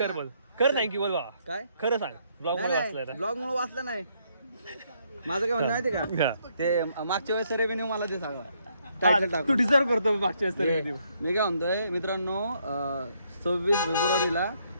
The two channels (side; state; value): both; inverted; correlation -0.72